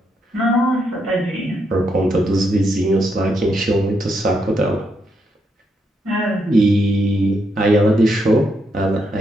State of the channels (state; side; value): normal; both; correlation 0.79